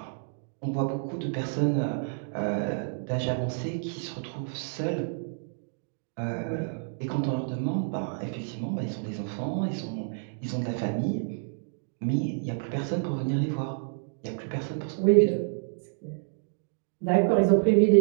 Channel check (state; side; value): silent; left; digital silence